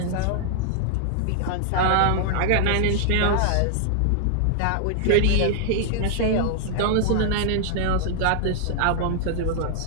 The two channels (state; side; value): different; both; correlation -0.01